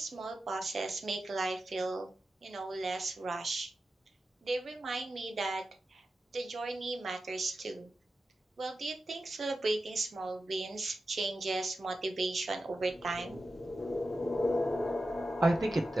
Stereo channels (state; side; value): normal; both; correlation 0.92